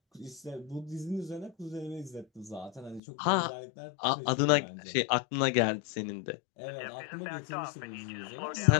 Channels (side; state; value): right; drops out; at 3.0 s